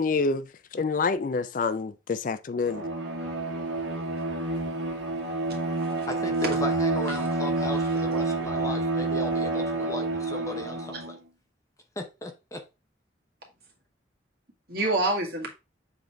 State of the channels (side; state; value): both; normal; correlation 0.07